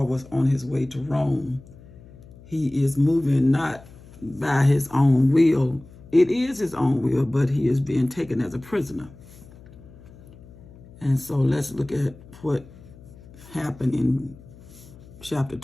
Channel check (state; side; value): noise; left; hum, 21 dB below the sound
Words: was on his way to Rome. He is moving not by his own will. It is his own will, but he is being taken as a prisoner. And so let's look at what happened in chapter